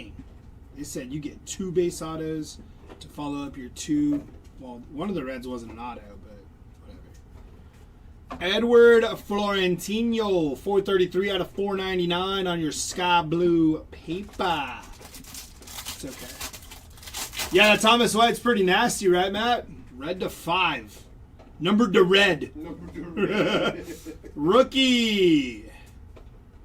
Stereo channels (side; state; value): both; identical; correlation 1.00